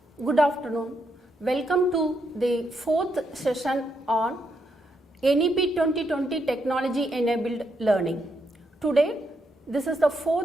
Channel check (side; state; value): both; normal; correlation 0.79